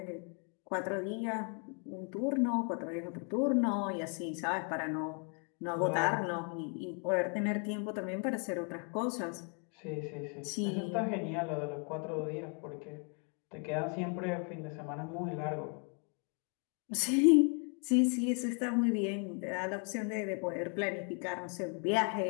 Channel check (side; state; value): right; quieter; 38.5 dB